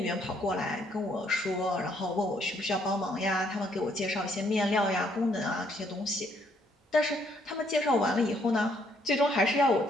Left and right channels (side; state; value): both; normal; correlation 0.68